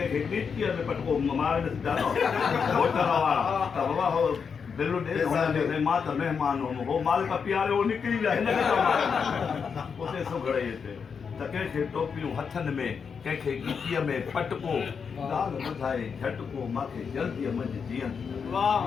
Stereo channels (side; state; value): right; quieter; 6.2 dB